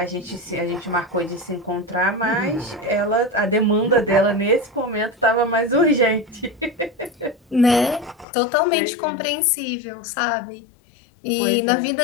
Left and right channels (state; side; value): drops out; right; at 8.2 s